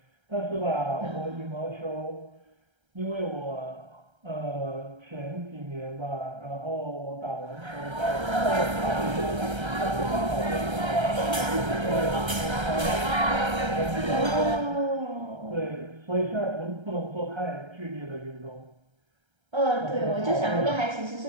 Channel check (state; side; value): late; left; 1.3 ms